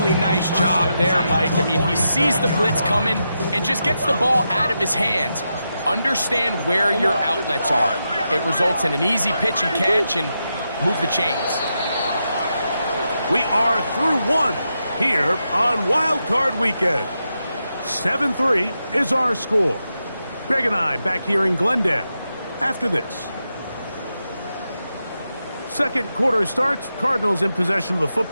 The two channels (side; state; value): both; inverted; correlation -0.86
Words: nice job there, Mike. I mean, he sees the blitz coming and just gets the ball out of his hands. Understand where your outlets are. It results in an easy pitch and catch and move the chains. We are through one here on Wild Card Weekend. 7-3 is our score. Greg and I back here in Glendale after this. Second quarter starts. Cardinals in possession of the